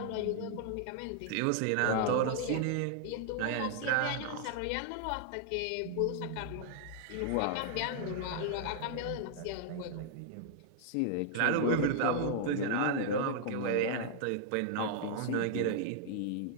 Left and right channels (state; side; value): different; both; correlation -0.01